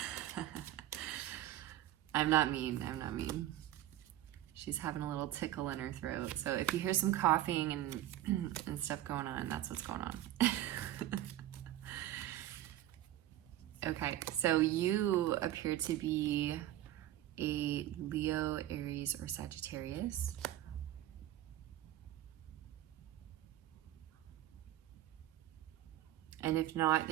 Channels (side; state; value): left; quieter; 13.5 dB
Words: I'm not mean. She's having a little tickle in her throat. So if you hear some coughing and stuff going on, that's what's going on. Okay, so you appear to be a Leo, Aries, or Sagittarius. And if not,